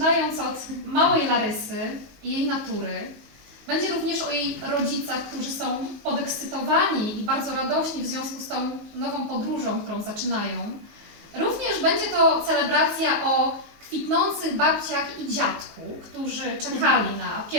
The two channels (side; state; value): left; late; 19 ms